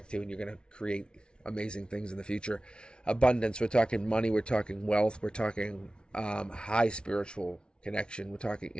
to, and you're going to create amazing things in the future. Abundance. We're talking money. We're talking wealth. We're talking high spiritual connection. We're talking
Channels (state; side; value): late; right; 0.056 ms